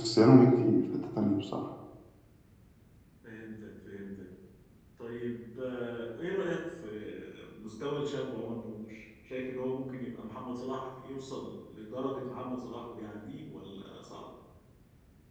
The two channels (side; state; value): both; identical; correlation 1.00